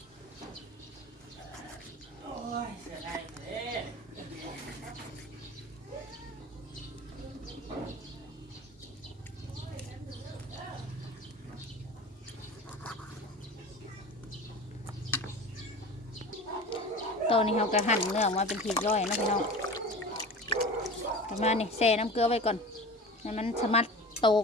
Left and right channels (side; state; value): both; normal; correlation 0.35